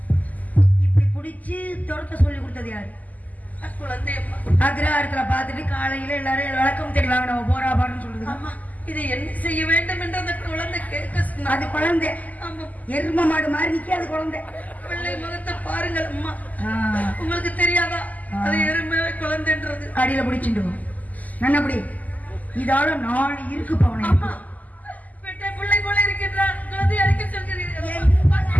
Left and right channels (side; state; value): right; late; 0.078 ms